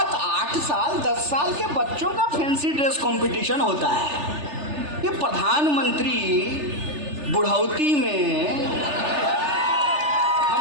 8 साल 10 साल के बच्चों का फैंसी ड्रेस कंपटीशन होता है। ये प्रधानमंत्री बुढ़ौती में,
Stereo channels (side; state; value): left; late; 3.3 ms